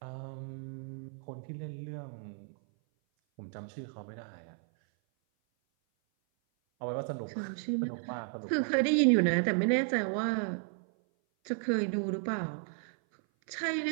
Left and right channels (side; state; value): left; silent; 56 dB below the other